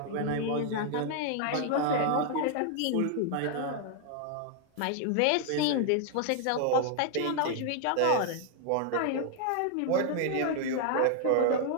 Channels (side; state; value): both; different; correlation 0.00